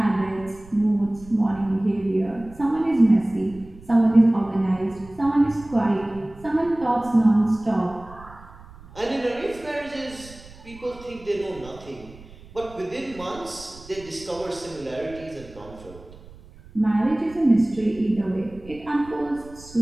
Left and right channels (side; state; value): right; noise; rumble, 20 dB below the sound